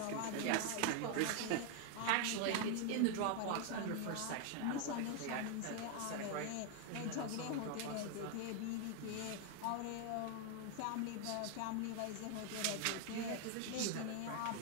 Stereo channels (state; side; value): different; both; correlation 0.01